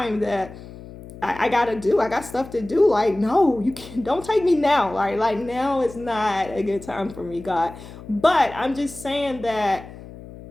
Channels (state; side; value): noise; left; hum, 16 dB below the sound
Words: that I gotta do. I got stuff to do. Like, no, you can't, don't take me now. Like now is not a good time for me, God. But I'm just saying that